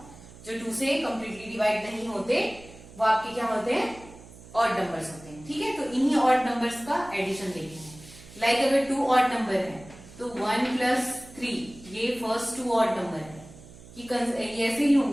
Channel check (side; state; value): right; noise; hum, 19 dB below the sound